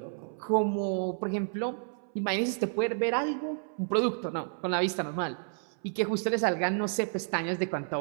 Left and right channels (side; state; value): left; silent; 57 dB below the other